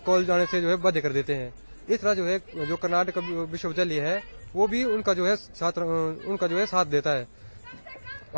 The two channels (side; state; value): both; inverted; correlation -1.00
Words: कॉलेज जाने से जो है बाध्य कर देते हैं। इस तरह जो है जो कर्नाटक विश्वविद्यालय है वो भी उनका जो है साथ देता है।